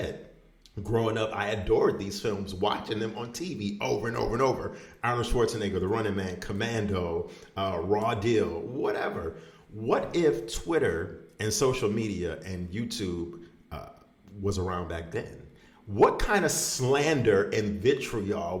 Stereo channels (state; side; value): identical; both; correlation 1.00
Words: growing up, I adored these films, watching them on TV over and over and over. Arnold Schwarzenegger, The Running Man, Commando, Raw Deal, whatever. What if Twitter and social media and YouTube was around back then? What kind of slander and vitriol